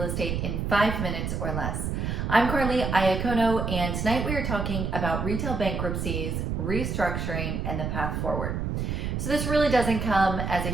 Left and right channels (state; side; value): noise; right; rumble, 2 dB below the sound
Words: estate in 5 minutes or less. I'm Carly Iacono, and tonight we are talking about retail bankruptcies, restructuring, and the path forward. So this really doesn't come as a